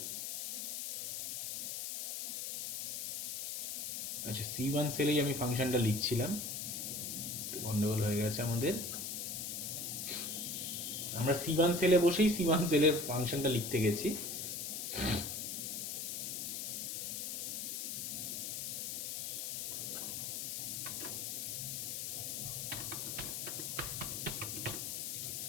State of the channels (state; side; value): noise; left; hiss, 3 dB below the sound